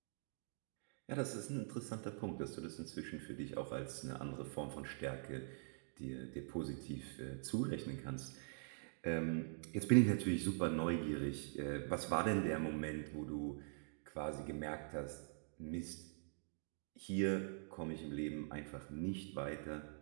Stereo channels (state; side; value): silent; left; digital silence